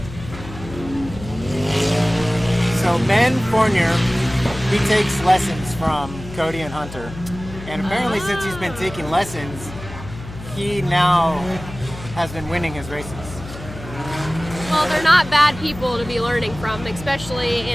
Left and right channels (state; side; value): noise; left; hum, 13 dB below the sound